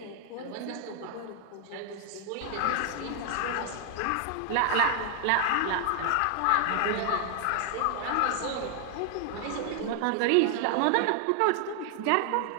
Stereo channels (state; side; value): different; both; correlation 0.00